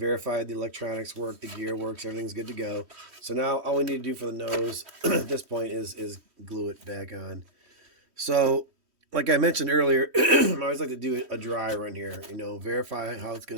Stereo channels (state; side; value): late; left; 3.1 ms